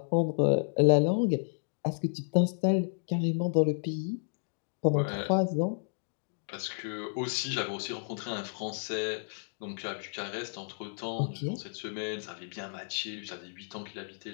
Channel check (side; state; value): right; silent; digital silence